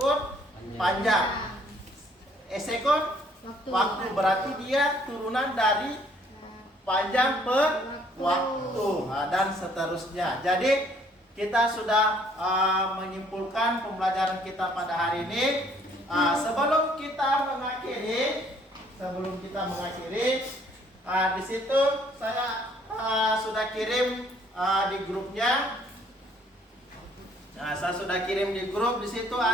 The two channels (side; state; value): both; normal; correlation 0.62